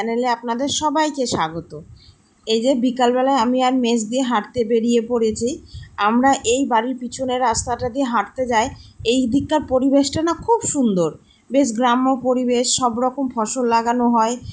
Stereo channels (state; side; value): identical; both; correlation 1.00